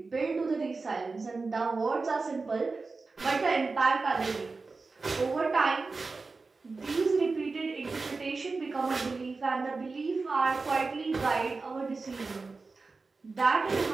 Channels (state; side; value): quieter; left; 4.0 dB